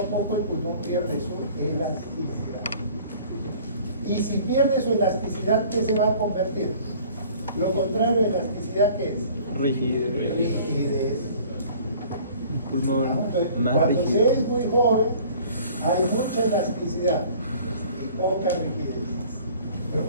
poco el pulmón pierde su elasticidad. Y si pierde su elasticidad, ¿qué se va a convertir? Lo contrario de elasticidad, ¿qué es? Rigidez. Rigidez. Un pulmón Entonces, más cuando se rígido. es muy joven, hay mucha elasticidad y poca rigidez. Pero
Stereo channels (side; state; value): both; inverted; correlation -0.50